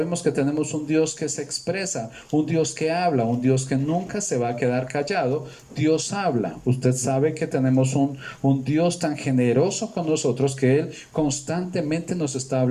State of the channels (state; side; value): identical; both; correlation 1.00